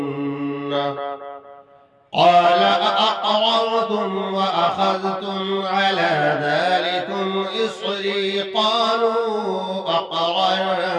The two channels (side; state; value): both; identical; correlation 1.00